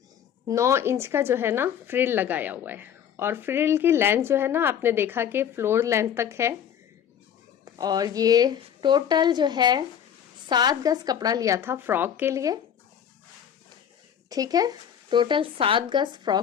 9 इंच का जो है ना फ्रिल लगाया हुआ है, और फ्रिल की लेंथ जो है ना आपने देखा कि फ्लोर लेंथ तक है। और ये टोटल जो है 7 गज कपड़ा लिया था फ्रॉक के लिए। ठीक है, टोटल 7 गज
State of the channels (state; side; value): quieter; right; 8.9 dB